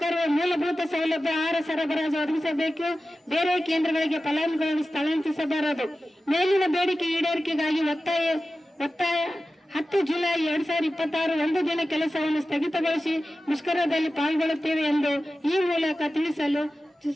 ಮೂಲಭೂತ ಸೌಲಭ್ಯ ಆಹಾರ ಸರಬರಾಜು ಒದಗಿಸಬೇಕು. ಬೇರೆ ಕೇಂದ್ರಗಳಿಗೆ ಫಲಾನುಭವಿಗಳನ್ನು ಸ್ಥಳಾಂತರಿಸಬಾರದು. ಮೇಲಿನ ಬೇಡಿಕೆ ಈಡೇರಿಕೆಗಾಗಿ ಒತ್ತಾಯ 10 ಜುಲೈ 2026 ಒಂದು ದಿನ ಕೆಲಸವನ್ನು ಸ್ಥಗಿತಗೊಳಿಸಿ ಮುಷ್ಕರದಲ್ಲಿ ಪಾಲ್ಗೊಳ್ಳುತ್ತೇವೆ ಎಂದು ಈ ಮೂಲಕ ತಿಳಿಸಲು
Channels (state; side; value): normal; both; correlation 0.94